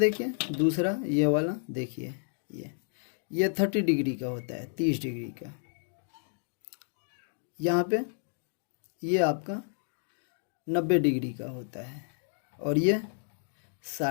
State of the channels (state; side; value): silent; right; digital silence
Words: दूसरा ये वाला देखिए, ये 30 डिग्री का होता है, 30 डिग्री का। यहाँ पे ये आपका 90 डिग्री का होता है और ये